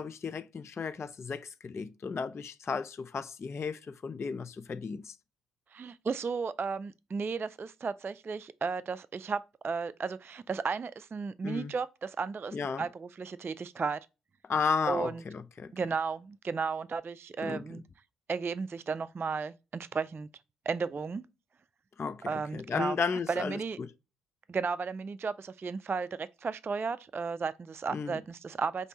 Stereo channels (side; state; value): both; normal; correlation 0.78